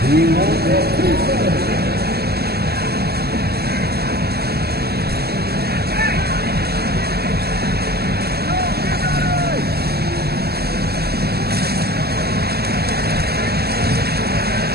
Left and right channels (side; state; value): left; late; 0.46 ms